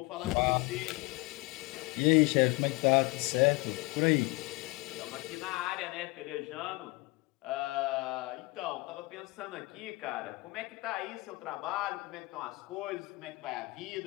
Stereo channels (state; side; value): quieter; right; 24.6 dB